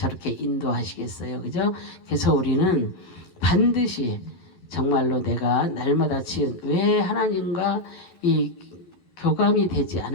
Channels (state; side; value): late; right; 11 ms